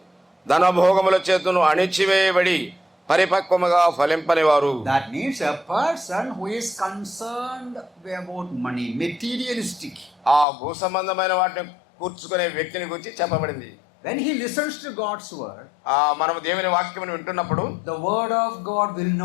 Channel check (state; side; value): drops out; right; at 10.5 s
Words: ధనభోగముల చేతను అణిచివేయబడి పరిపక్వముగా ఫలింపని వారు. That means a person who is concerned about money, materialistic. ఆ భూ సంబంధమైన వాటిని కూర్చుకునే వ్యక్తిని గురించి చెప్పబడింది. When he listens to God's word, మనం దేవుని వాక్యమును వింటున్నప్పుడు the word of God will